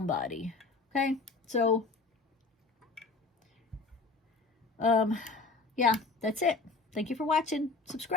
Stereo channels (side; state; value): right; quieter; 3.9 dB